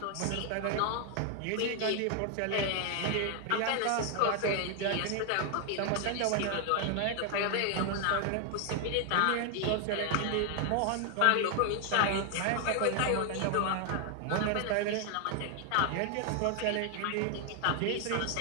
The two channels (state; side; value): different; both; correlation 0.00